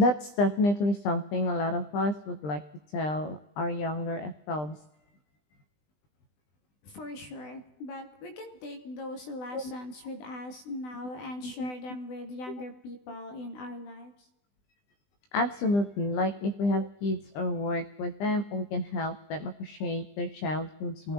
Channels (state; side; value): late; right; 20 ms